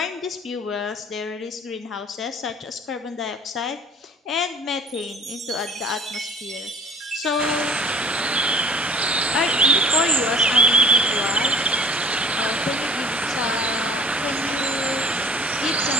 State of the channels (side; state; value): both; normal; correlation 0.50